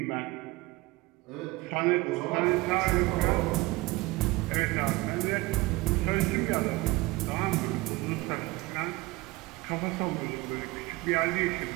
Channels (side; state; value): left; quieter; 21.2 dB